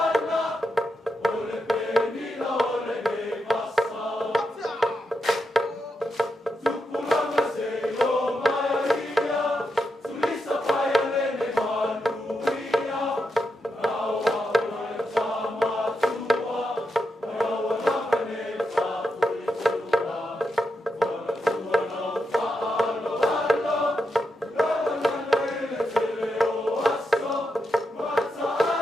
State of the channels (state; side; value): normal; both; correlation 0.86